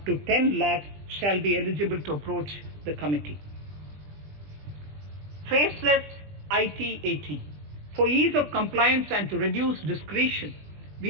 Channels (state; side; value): late; left; 20 ms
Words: to 10 lakh shall be eligible to approach the committee. Faceless IT-AT. For ease of compliance and to reduce discretion,